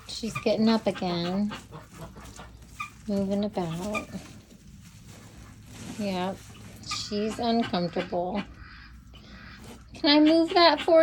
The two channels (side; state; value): both; identical; correlation 1.00